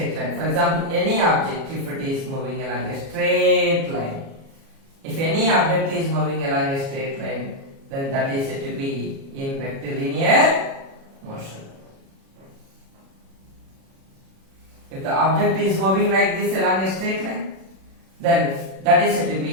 line. For example, any object, if it is moving along a straight line, if any object is moving along a straight line, then that is said to be in rectilinear motion. If the object is moving like this along a straight line, then that is said to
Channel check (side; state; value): left; late; 37 ms